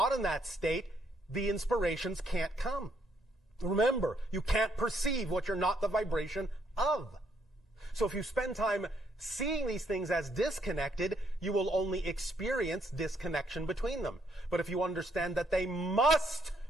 in that state, the inspirations can't come. Remember, you can't perceive what you're not the vibration of. So if you spend time seeing these things as disconnected, you will only experience disconnection between them. But if you understand that they must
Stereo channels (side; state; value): both; normal; correlation 0.71